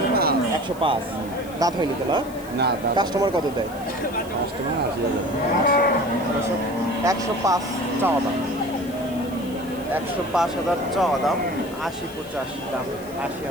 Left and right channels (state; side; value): noise; left; hiss, 20 dB below the sound